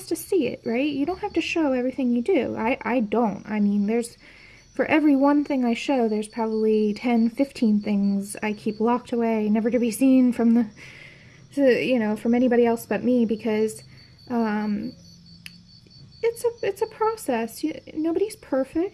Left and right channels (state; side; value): identical; both; correlation 1.00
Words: to see it, right? You don't have to show everything you do. I don't. I mean, for every one thing I show, there's probably 10, 15 things I keep locked away, never to be seen from from anybody else but me, because it's a process. Nobody's